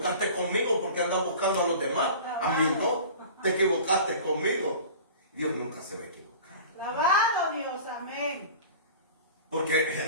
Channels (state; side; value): inverted; both; correlation -0.39